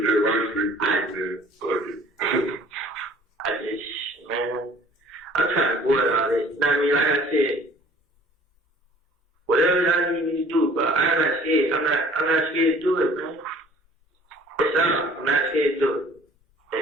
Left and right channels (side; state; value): both; normal; correlation 0.52